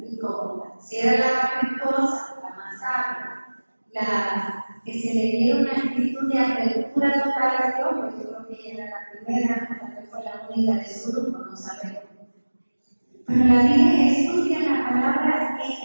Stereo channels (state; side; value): inverted; both; correlation -1.00